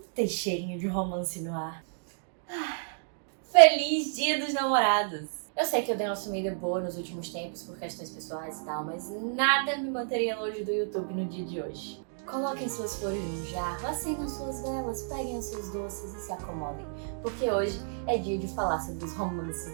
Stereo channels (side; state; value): left; silent; digital silence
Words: Tem cheirinho de romance no ar. Feliz Dia dos Namorados! Eu sei que eu dei uma sumida boa nos últimos tempos por questões pessoais e tal, mas nada me manteria longe do YouTube no dia de hoje. Coloquem suas flores no jarro, acendam suas velas, peguem os seus doces e se acomodem, porque hoje é dia de falar sobre os romances